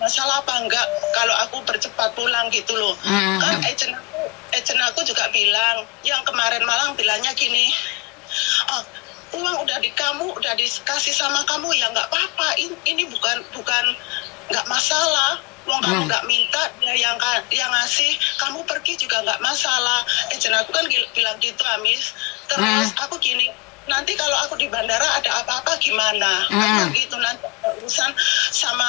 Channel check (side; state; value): right; quieter; 27.1 dB